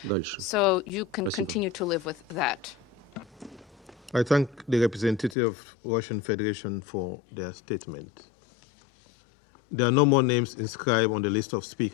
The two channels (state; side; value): drops out; right; at 5.4 s